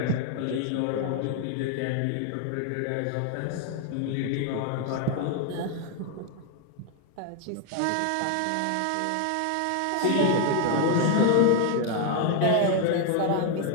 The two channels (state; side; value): different; both; correlation 0.01